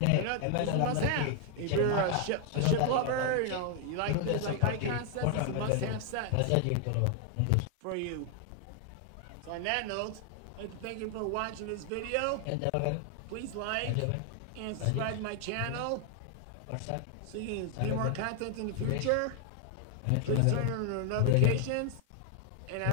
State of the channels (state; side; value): different; both; correlation 0.00